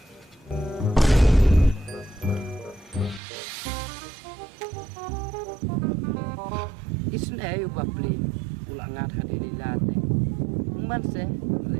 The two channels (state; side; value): drops out; left; at 3.2 s